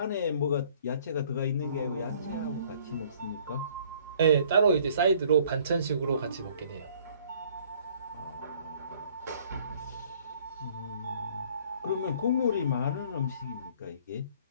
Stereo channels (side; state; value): both; inverted; correlation -0.57